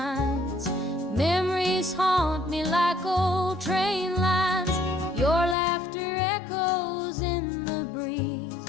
Memories haunt me like old train lines. Your laughter echoes in the breeze,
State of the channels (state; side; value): drops out; right; at 5.6 s